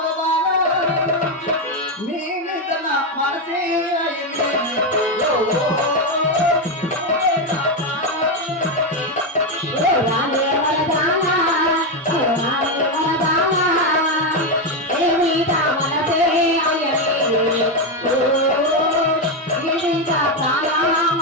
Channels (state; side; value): normal; both; correlation 0.07